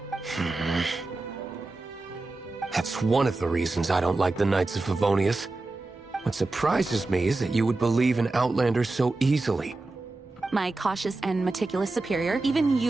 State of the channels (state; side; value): quieter; left; 3.2 dB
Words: That's one of the reasons I don't like the Knights of Favonius. What surprises me is that you would believe in Outlanders so easily. My cautious and meticulous superior, even